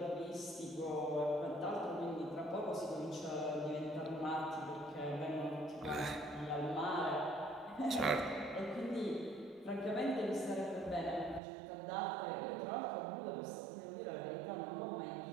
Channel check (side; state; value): left; drops out; at 11.4 s